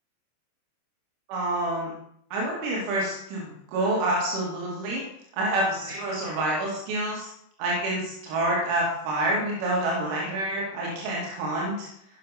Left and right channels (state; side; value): late; left; 26 ms